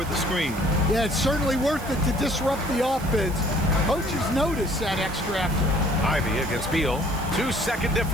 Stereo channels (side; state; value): right; noise; hiss, 16 dB below the sound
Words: the screen. Yeah, it's certainly worth it to disrupt the offense. Coaches notice that extra effort. Ivy against Beal. 2-second